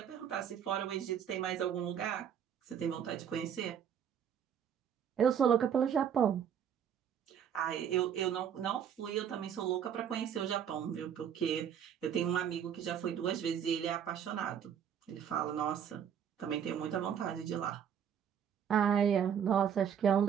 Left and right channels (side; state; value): left; quieter; 8.6 dB